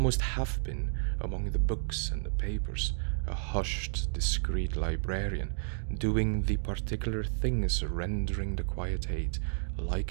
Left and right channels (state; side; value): silent; left; digital silence